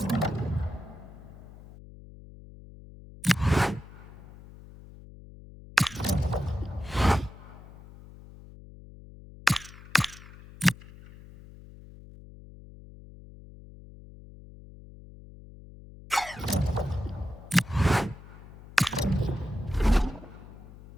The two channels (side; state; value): left; noise; hum, 18 dB below the sound